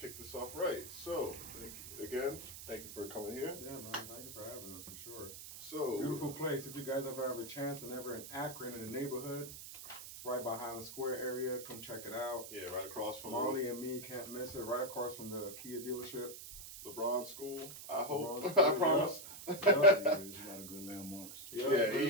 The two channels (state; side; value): noise; right; hiss, 11 dB below the sound